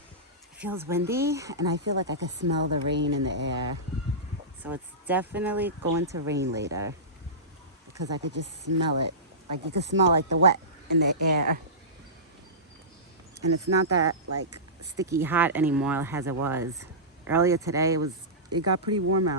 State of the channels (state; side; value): normal; both; correlation -0.19